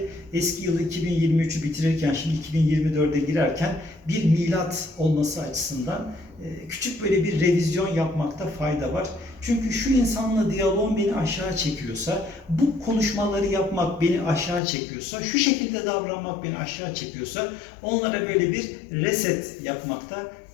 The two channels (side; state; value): right; drops out; at 14.6 s